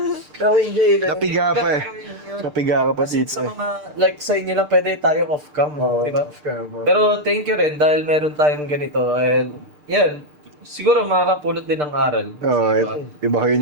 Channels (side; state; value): left; late; 6.7 ms